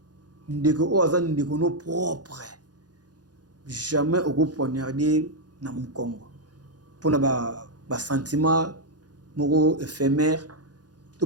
ndeko o azani ndeko no propre jamais au poignarder na mukongo pona ba sentiment moko éphémère tout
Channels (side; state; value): left; late; 0.69 ms